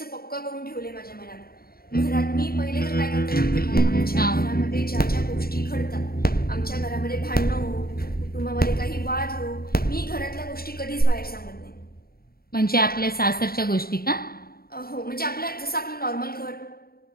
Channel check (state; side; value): late; right; 0.44 ms